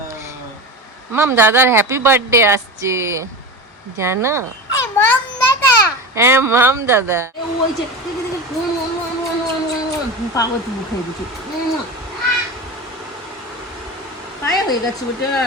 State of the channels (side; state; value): both; normal; correlation 0.25